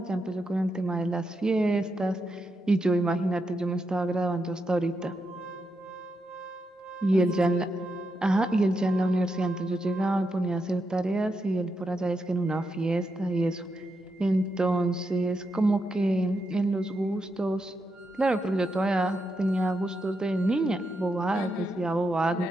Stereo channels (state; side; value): normal; both; correlation 0.84